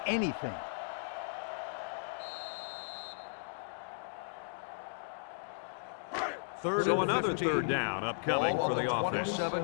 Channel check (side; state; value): right; silent; digital silence